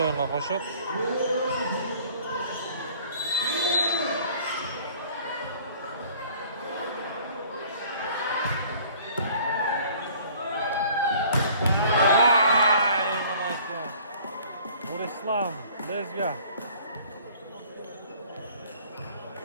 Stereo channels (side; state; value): both; inverted; correlation -0.52